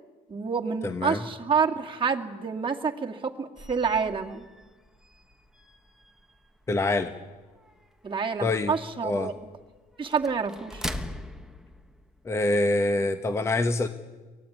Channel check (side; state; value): both; normal; correlation 0.54